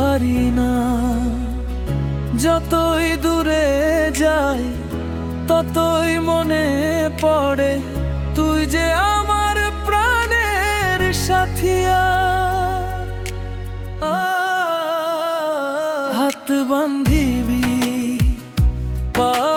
না। যতই দূরে যাই ততই মনে পড়ে তুই যে আমার প্রাণের সাথিয়া। হাত বান্ধিবি, পা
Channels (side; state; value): both; identical; correlation 1.00